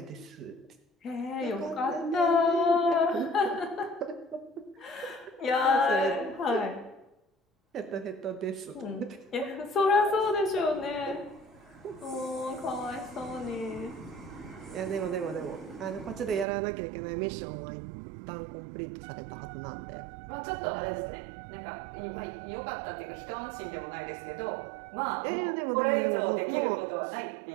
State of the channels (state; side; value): drops out; left; at 16.4 s